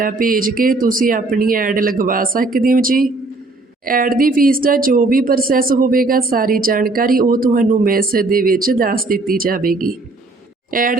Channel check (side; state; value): left; quieter; 3.2 dB